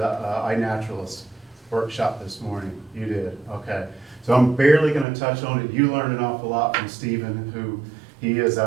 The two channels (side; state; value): left; drops out; at 5.1 s